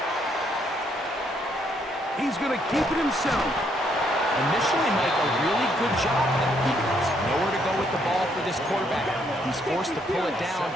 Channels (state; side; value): normal; both; correlation 0.71